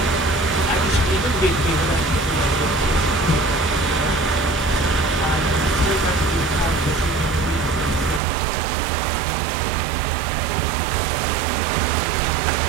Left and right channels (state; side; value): drops out; left; at 8.2 s